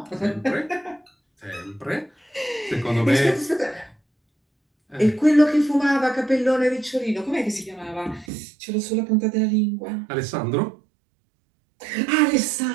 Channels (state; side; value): drops out; left; at 8.3 s